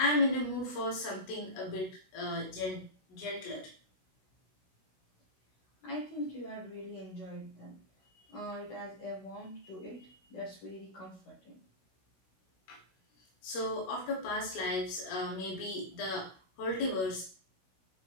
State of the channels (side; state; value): right; late; 16 ms